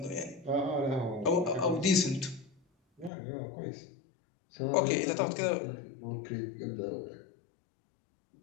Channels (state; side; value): drops out; right; at 3.1 s